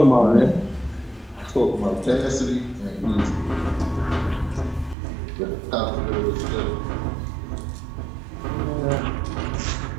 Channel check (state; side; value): drops out; left; at 5.0 s